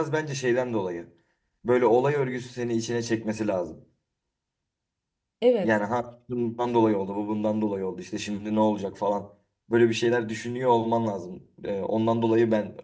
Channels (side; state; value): both; identical; correlation 1.00